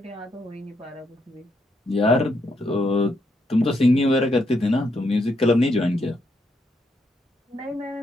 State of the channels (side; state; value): both; normal; correlation 0.77